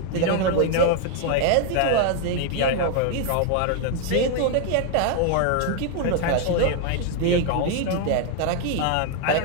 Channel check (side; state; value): both; different; correlation 0.00